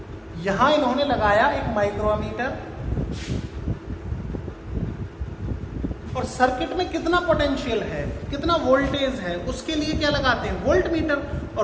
यहां इन्होंने लगाया एक माइक्रो अमीटर और सर्किट में कितना पोटेंशियल है, कितना वोल्टेज है, उसके लिए क्या लगाते हैं? Volt meter.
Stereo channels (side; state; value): both; identical; correlation 1.00